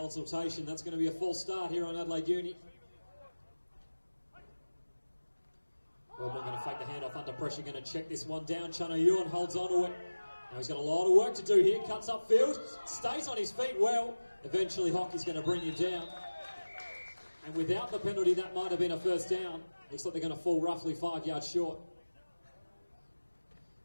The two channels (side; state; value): both; inverted; correlation -1.00